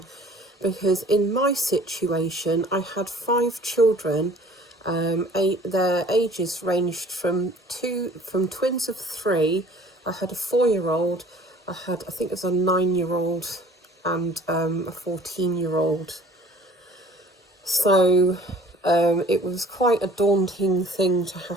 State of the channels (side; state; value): both; normal; correlation 0.50